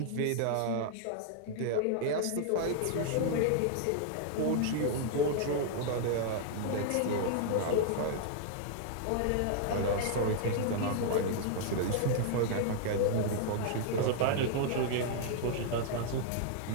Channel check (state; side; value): different; both; correlation -0.01